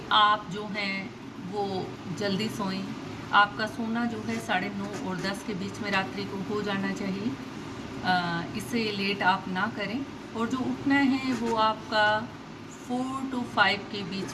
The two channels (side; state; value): both; identical; correlation 1.00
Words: आप जो हैं वो जल्दी सोएं। आपका सोना जो है 9:30 और 10 के बीच में रात्रि को हो जाना चाहिए। इससे लेट आप ना करें। और जो उठना है वो आपका 4 to 5 के